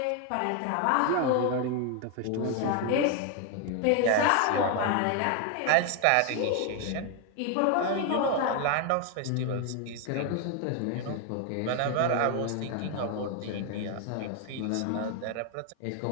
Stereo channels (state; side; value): different; both; correlation 0.01